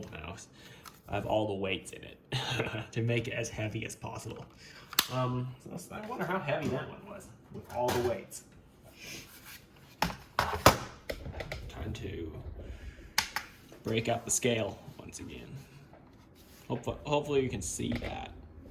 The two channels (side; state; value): both; identical; correlation 1.00